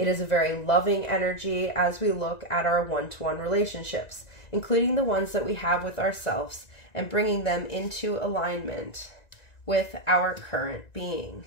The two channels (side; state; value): right; late; 1.9 ms